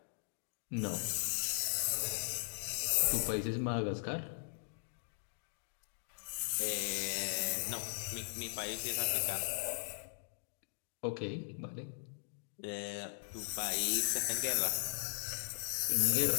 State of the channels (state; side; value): silent; right; digital silence